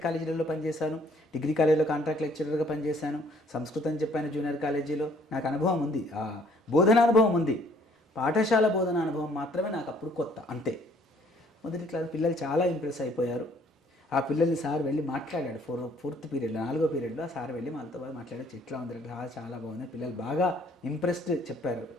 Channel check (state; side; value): normal; both; correlation 0.61